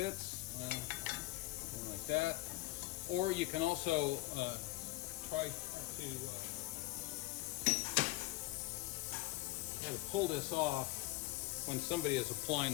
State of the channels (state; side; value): quieter; right; 20.0 dB